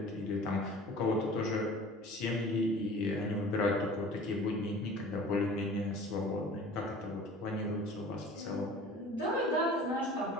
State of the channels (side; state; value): both; normal; correlation 0.44